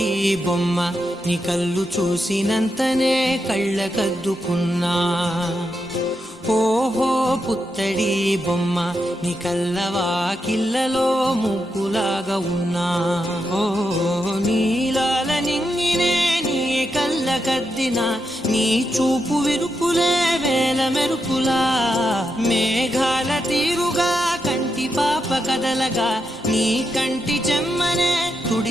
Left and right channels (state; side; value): normal; both; correlation 0.85